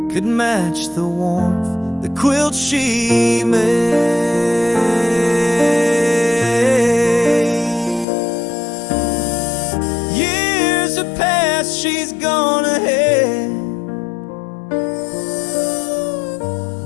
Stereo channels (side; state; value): right; drops out; at 8.1 s